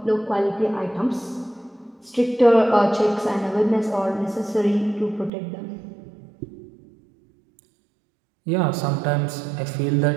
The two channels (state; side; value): drops out; left; at 5.3 s